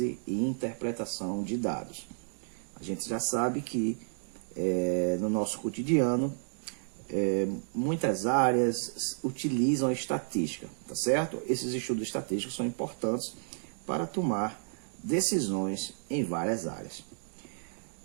e interpretação de dados. A gente já sabe que no nosso cotidiano, muitas áreas utilizam a estatística, tá certo? Esses estudos estatísticos são importantes para tomar decisões em várias áreas.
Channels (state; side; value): silent; left; digital silence